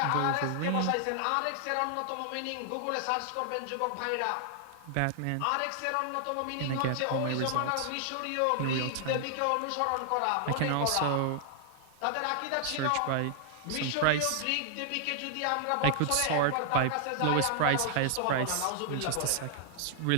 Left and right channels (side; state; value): both; different; correlation 0.00